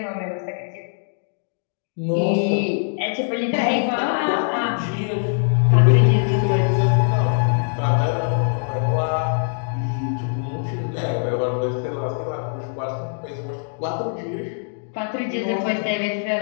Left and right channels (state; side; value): silent; right; digital silence